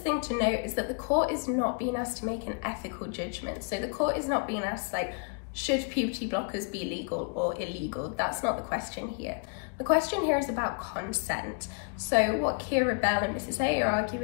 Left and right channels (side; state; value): right; quieter; 38.3 dB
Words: thing to note is that the court is not being asked to make an ethical judgment. So the court is not being asked, like, should puberty blockers be legal or illegal? That's not the question here. The question here is about consent. So what Kira Bell and Mrs. A are